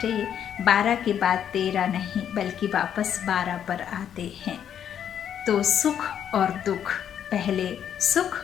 12 के बाद 13 नहीं बल्कि वापस 12 पर आते हैं, तो सुख और दुख, पहले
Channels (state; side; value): quieter; right; 9.2 dB